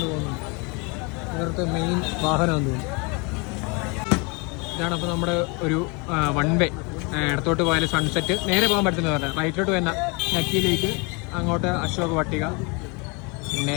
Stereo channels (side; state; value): right; quieter; 30.6 dB